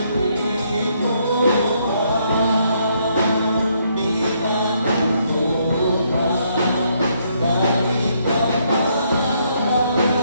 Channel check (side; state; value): both; inverted; correlation -0.72